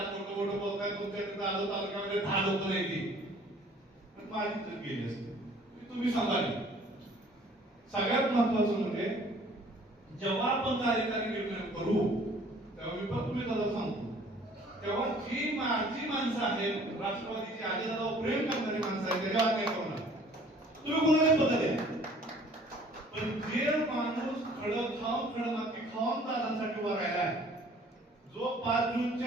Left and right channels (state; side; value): normal; both; correlation 0.54